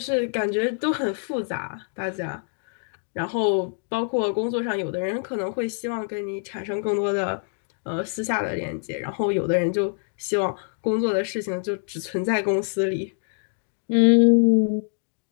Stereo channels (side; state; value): right; silent; digital silence